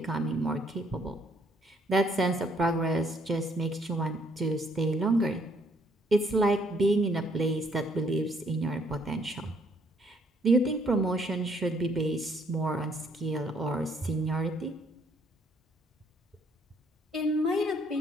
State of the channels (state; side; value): normal; both; correlation 0.67